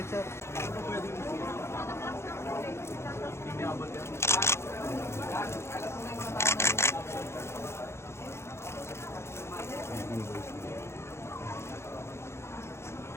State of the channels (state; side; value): late; right; 0.13 ms